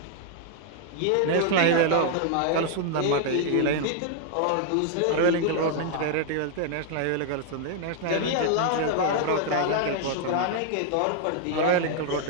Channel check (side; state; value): both; different; correlation 0.00